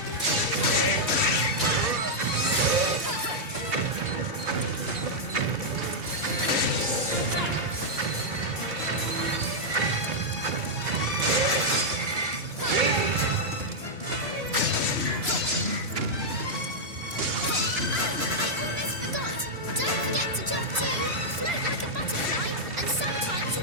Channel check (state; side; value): late; left; 2.9 ms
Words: Float like a butterfly, and sometimes you